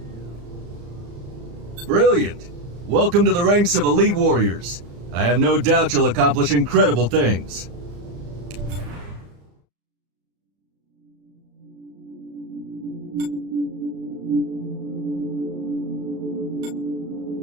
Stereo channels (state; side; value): late; left; 34 ms